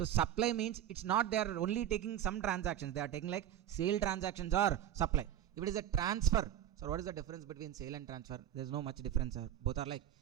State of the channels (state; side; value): quieter; left; 11.3 dB